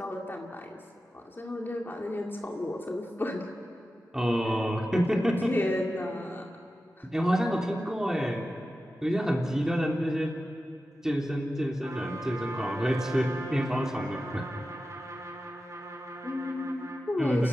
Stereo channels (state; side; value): normal; both; correlation 0.93